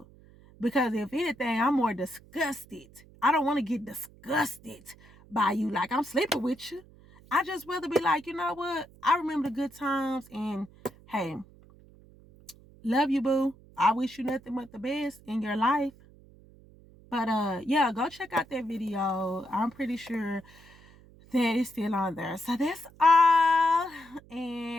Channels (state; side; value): noise; right; hum, 24 dB below the sound